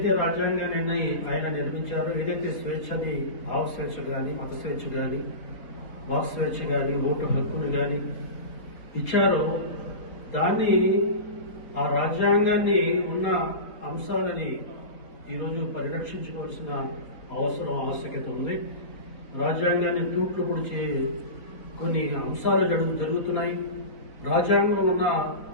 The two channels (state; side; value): late; right; 4.0 ms